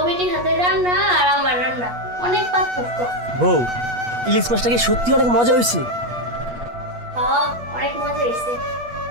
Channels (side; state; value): left; late; 8.3 ms